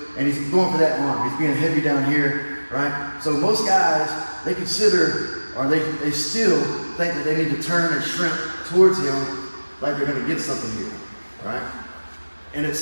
and he's going for that arm. He's being heavy down here, right? So most guys, they consider, or they still think that they need to turn and shrimp towards him like they're gonna get something here, right? And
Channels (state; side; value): inverted; both; correlation -1.00